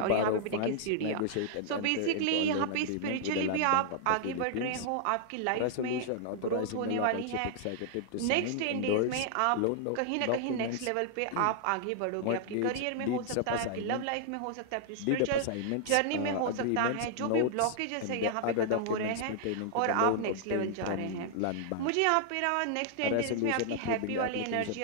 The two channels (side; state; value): both; different; correlation -0.01